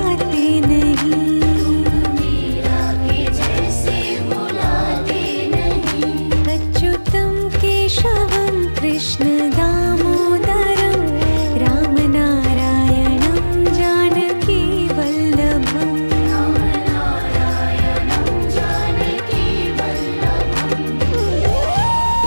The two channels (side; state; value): both; inverted; correlation -1.00